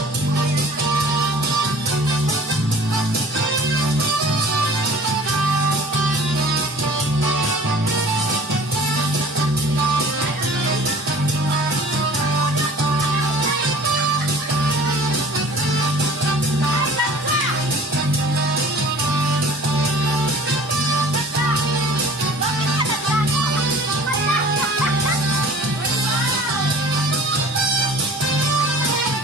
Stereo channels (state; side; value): normal; both; correlation 0.46